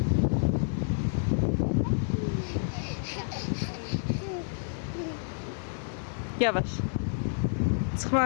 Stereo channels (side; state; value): right; silent; digital silence